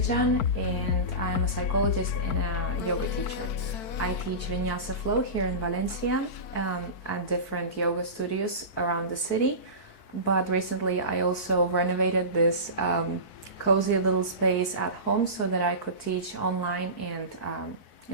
and I'm a psychologist and a yoga teacher. I teach Vinyasa Flow here in Valencia at different yoga studios around the city. But recently I also renovated this cozy little space at home so that I could teach online and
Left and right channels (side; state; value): right; late; 4.6 ms